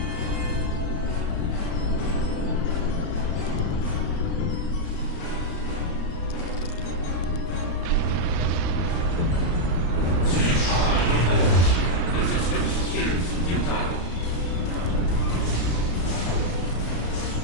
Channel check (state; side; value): late; right; 34 ms